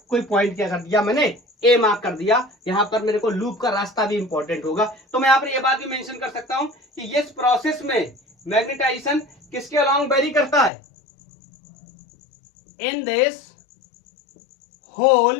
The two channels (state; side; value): drops out; right; at 10.7 s